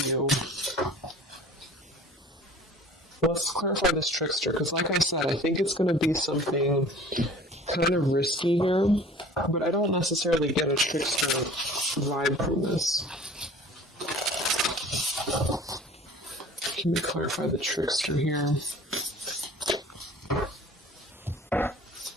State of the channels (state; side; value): normal; both; correlation 0.46